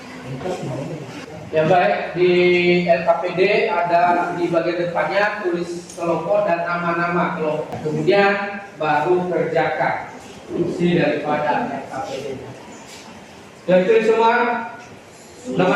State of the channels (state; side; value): identical; both; correlation 1.00